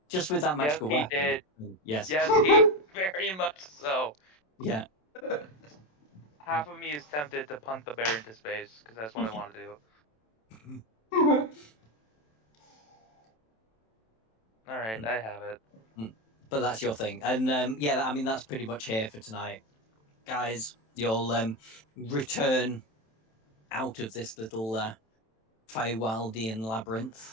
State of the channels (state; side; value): late; right; 27 ms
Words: Just with that magical Yes, weapon. he did. Yes. Yes, he very much so. Yeah. Half of me is tempted to punt the bear into space, because that's what I want to do. Alright, I have it. But that's your thing. And yeah, I mean, that's pretty much here for tonight. Guys, you'll return out of this little Feywildian